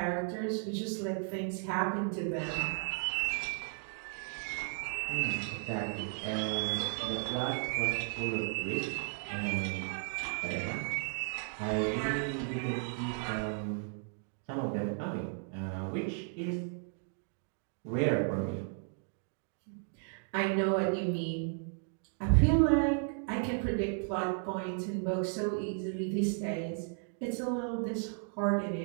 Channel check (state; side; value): silent; left; 55 dB below the other